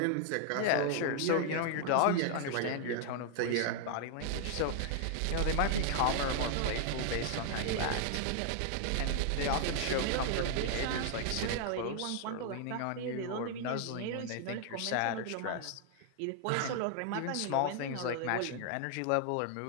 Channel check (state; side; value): different; both; correlation 0.00